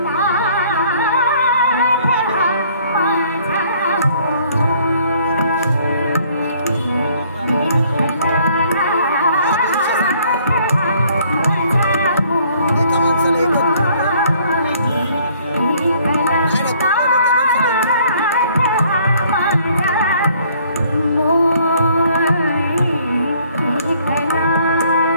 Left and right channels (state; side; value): inverted; both; correlation -0.61